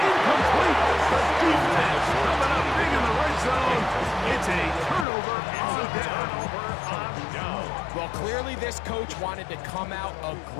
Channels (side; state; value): right; drops out; at 5.1 s